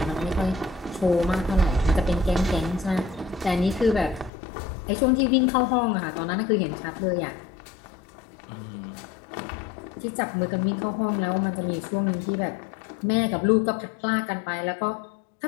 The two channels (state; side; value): drops out; right; at 4.3 s